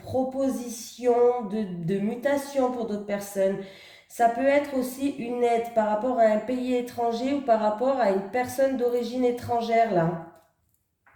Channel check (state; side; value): identical; both; correlation 1.00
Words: de mutation pour d'autres personnes. Ça peut être aussi une aide par rapport à un pays étranger ou par rapport à une personne d'origine étrangère, là.